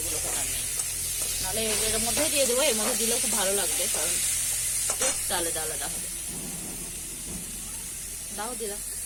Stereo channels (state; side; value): identical; both; correlation 1.00